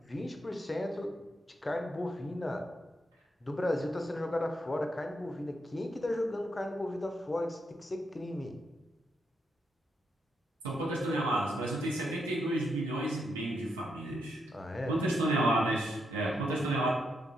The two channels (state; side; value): normal; both; correlation 0.81